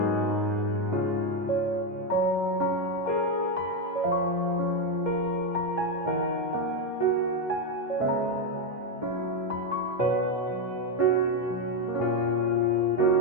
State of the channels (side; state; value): both; normal; correlation 0.07